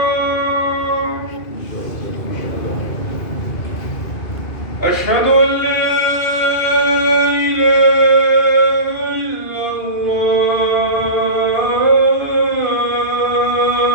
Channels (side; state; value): right; late; 2.5 ms